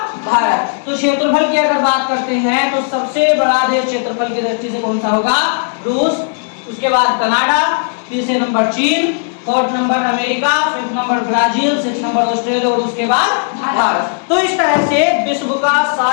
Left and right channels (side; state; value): right; silent; 65 dB below the other